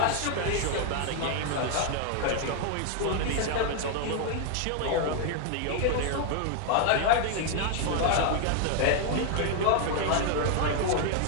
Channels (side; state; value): both; different; correlation 0.00